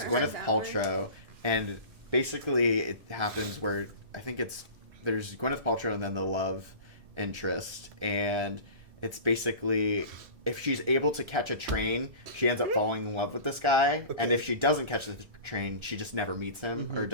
heard Gwyneth that one. Paltrow, and basically it happens where I think there's Gwyneth Paltrow and then the love interest, and it's basically if she's able to catch a train, she ends up falling in love with this guy, and if she doesn't catch the train, she just never meets him or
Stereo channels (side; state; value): left; late; 1.7 ms